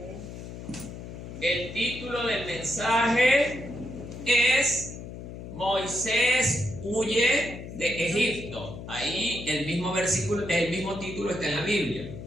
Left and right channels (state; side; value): noise; left; hum, 11 dB below the sound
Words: El título del mensaje es Moisés huye de Egipto. Ahí el mismo versículo, el mismo título está en la Biblia.